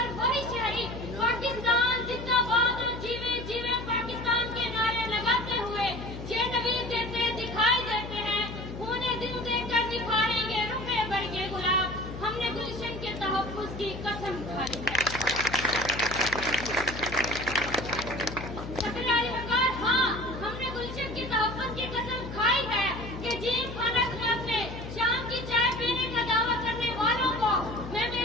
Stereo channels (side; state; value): left; noise; hum, 9 dB below the sound